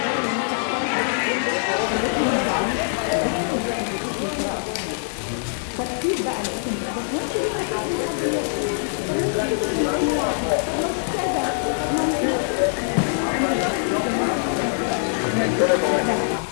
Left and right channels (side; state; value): right; silent; digital silence